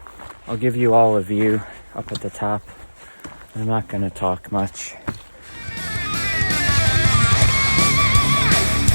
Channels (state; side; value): inverted; both; correlation -1.00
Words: I'll give you all a view up at the top. I'm not going to talk much.